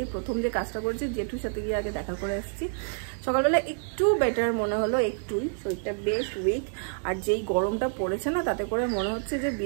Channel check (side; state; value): left; silent; digital silence